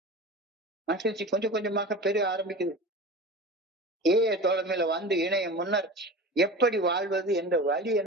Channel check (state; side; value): normal; both; correlation 0.33